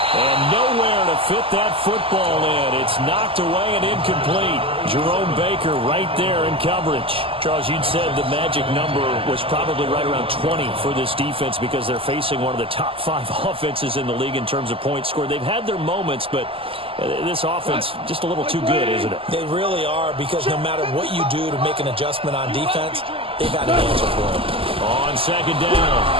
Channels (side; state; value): left; late; 0.26 ms